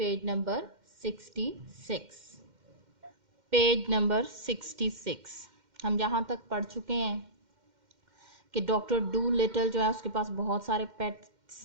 number 66. Page number 66. हम जहाँ तक पढ़ चुके हैं कि doctor do little जो है उसके पास बहुत सारे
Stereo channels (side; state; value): left; late; 2.1 ms